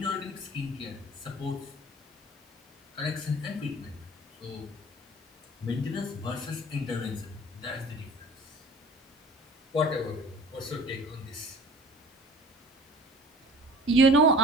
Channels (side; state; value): both; normal; correlation 0.45